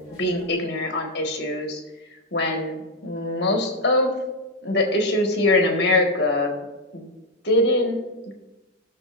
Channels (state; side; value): normal; both; correlation 0.03